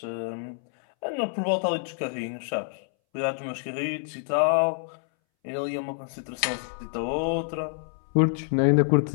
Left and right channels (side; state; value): right; silent; 60 dB below the other